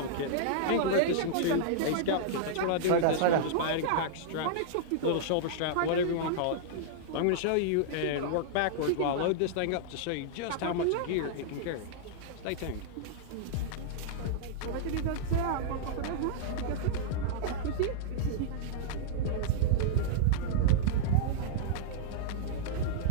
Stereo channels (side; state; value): both; different; correlation -0.02